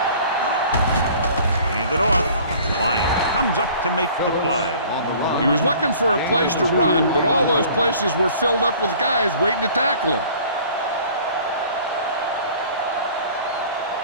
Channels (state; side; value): inverted; both; correlation -0.49